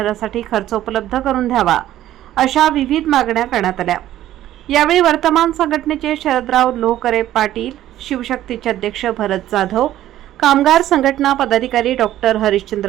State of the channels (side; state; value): left; quieter; 13.2 dB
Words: खर्च उपलब्ध करून द्यावा, अशा विविध मागण्या करण्यात आल्या. यावेळी वर्तमान संघटनेचे शरदराव लोहकरे पाटील, शिवशक्तीचे अध्यक्ष भरत जाधव, कामगार संघटना पदाधिकारी डॉक्टर